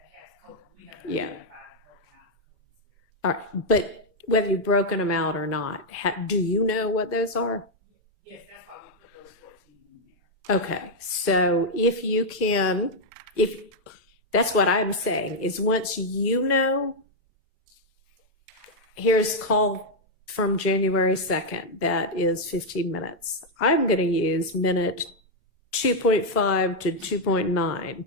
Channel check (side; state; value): both; normal; correlation -0.01